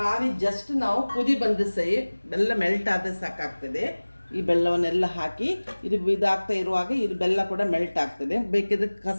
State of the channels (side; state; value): both; inverted; correlation -1.00